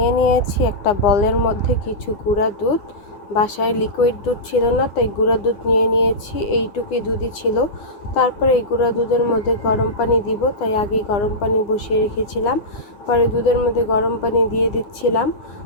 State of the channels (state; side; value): late; right; 9.7 ms